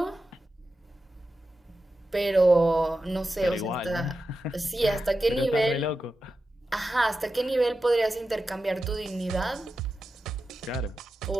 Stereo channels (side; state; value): both; normal; correlation 0.91